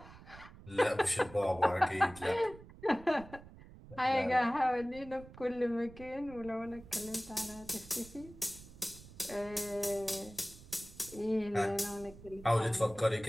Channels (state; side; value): noise; right; rumble, 18 dB below the sound